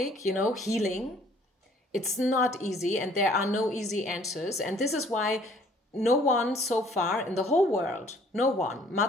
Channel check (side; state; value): both; normal; correlation 0.58